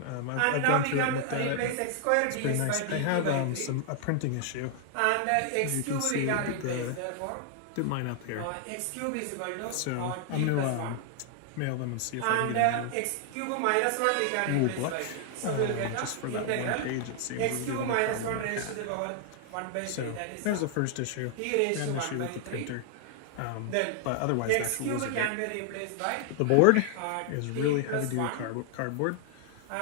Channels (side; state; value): both; different; correlation 0.00